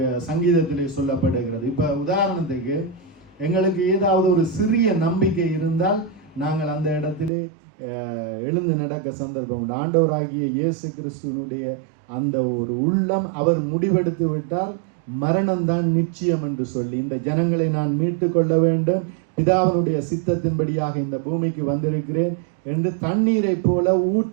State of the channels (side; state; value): left; drops out; at 7.3 s